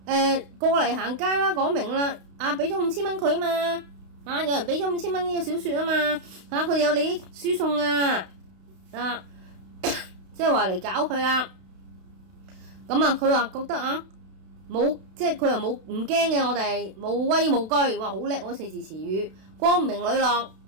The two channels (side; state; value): left; late; 32 ms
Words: 過嚟行街啦，講明啦，俾咗5000蚊佢啊嘛，有人俾咗5000蚊呢個小說啊嘛，佢哋有利益輸送即係話嚟搞佢啦。佢話覺得冇，即係佢又冇唔驚嘅，我哋無畏無懼，哇好叻嗰4字詞語，光明磊落